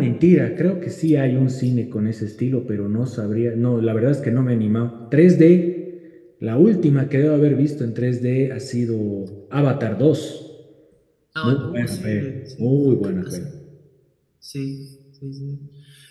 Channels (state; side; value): identical; both; correlation 1.00